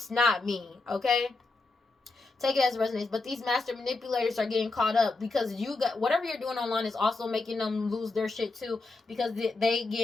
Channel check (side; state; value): right; quieter; 3.5 dB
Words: not me. Okay? Take it as it resonates. But these master manipulators are getting caught up because you got whatever you're doing online is also making them lose their shit too, because they